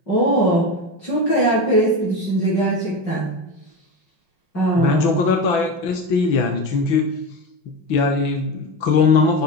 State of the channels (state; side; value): late; right; 6.0 ms